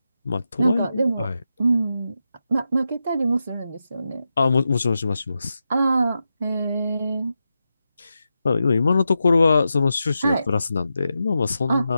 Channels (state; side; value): inverted; both; correlation -0.88